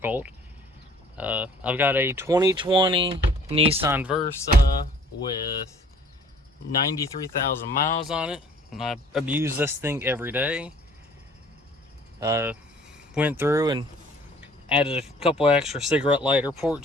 I've got a 2020 Nissan Versa with 93,000 miles on it, and I abuse this thing every day. Went through and added a couple extra cigarette lighter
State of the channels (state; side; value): normal; both; correlation 0.54